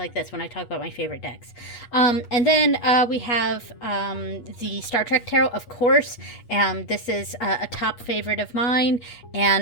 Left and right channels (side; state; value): right; late; 8.3 ms